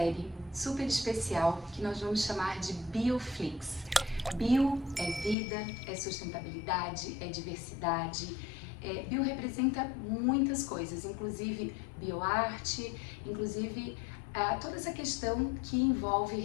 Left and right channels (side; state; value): right; drops out; at 5.4 s